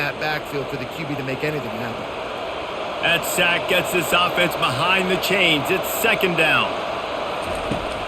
backfield for the QB to make anything happen. That sack gets this offense behind the chains. It's second down.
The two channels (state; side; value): identical; both; correlation 1.00